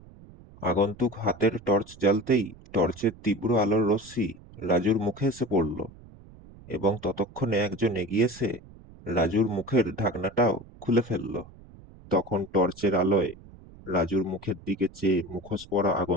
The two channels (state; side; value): noise; right; rumble, 21 dB below the sound